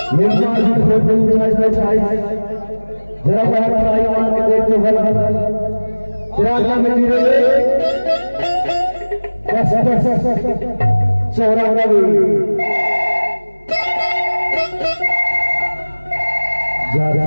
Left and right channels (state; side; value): inverted; both; correlation -1.00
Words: ये जरा बाहर आई मान के देखते भला जरा का में जीरो चौरा रवि